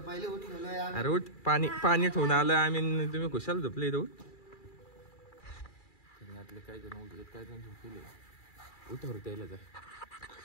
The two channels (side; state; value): right; late; 2.3 ms